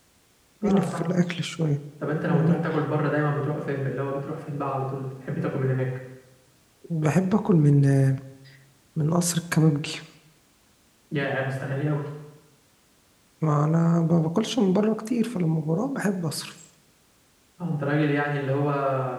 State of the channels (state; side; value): identical; both; correlation 1.00